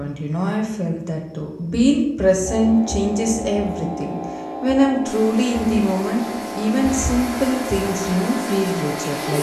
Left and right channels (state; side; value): identical; both; correlation 1.00